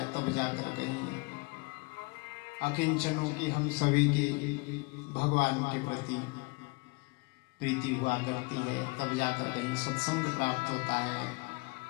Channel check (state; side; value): quieter; right; 28.3 dB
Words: तब जाकर कहीं अकिंचनों की हम सभी की भगवान के प्रति प्रीति हुआ करती है, तब जाकर कहीं सत्संग प्राप्त होता है।